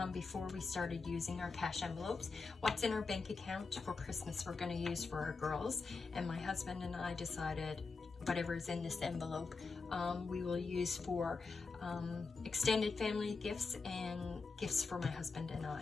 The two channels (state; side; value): quieter; right; 4.4 dB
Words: before we started using our cash envelopes. What's in our bank account for Christmas we're going to use for our girls, and my husband and I decided whatever's in this envelope we will use for extended family gifts and gifts for my husband and